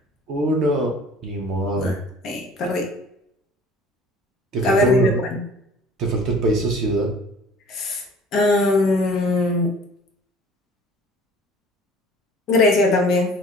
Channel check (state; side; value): normal; both; correlation 0.49